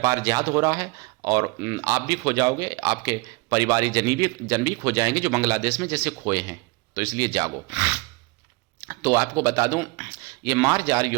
जिहाद हो रहा है, और आप भी खो जाओगे, आपके परिवारिक जन भी खो जाएंगे जो बांग्लादेश में जैसे खोए हैं। तो इसलिए जागो। तो आपको बता दूं, ये मार्जार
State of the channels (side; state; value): left; quieter; 25.3 dB